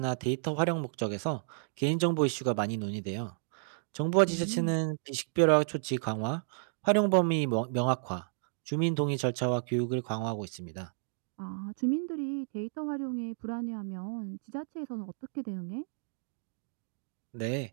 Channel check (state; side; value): silent; left; digital silence